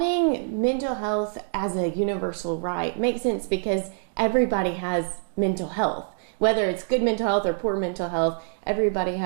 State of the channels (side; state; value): left; silent; digital silence